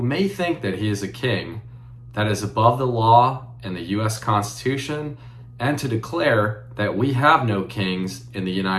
may think that he is a king that is above the law and the U.S. Constitution, and to declare that we have no kings in the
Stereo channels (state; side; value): identical; both; correlation 1.00